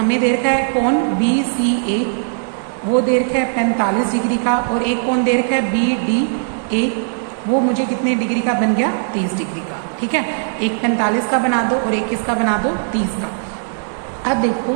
दे रखा है कोण BCA, वो दे रखा है 45 डिग्री का, और एक कोण दे रखा है BDA, वो मुझे कितने डिग्री का बन गया, 30 डिग्री का, ठीक है। एक 45 का बना दो और एक किसका बना दो, 30 का। अब देखो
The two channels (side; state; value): left; silent; digital silence